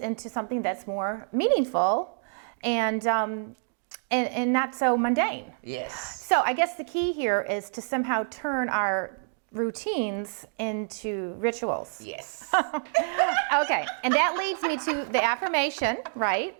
something that's more meaningful and not so mundane. Yes. So I guess the key here is to somehow turn our routines into rituals. Yes. Okay, and that leads me to the affirmation, right?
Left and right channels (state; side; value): silent; left; digital silence